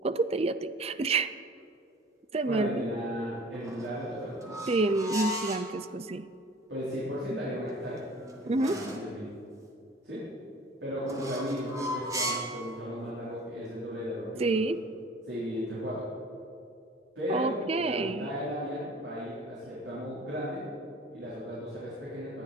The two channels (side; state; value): both; normal; correlation 0.46